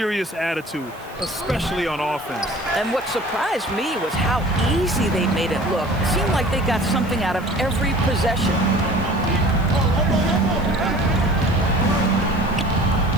attitude, especially on offense. And what surprised me was how easy they made it look. It seemed like they got something out of every possession.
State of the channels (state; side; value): noise; right; hiss, 25 dB below the sound